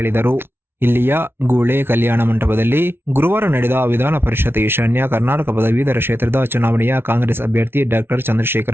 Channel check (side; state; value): left; late; 0.11 ms